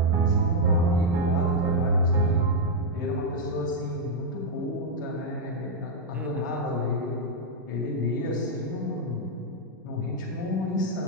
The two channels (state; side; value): normal; both; correlation -0.02